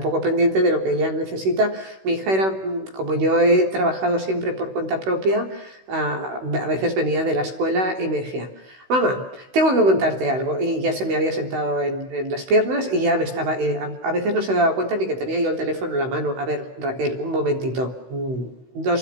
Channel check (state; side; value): late; left; 16 ms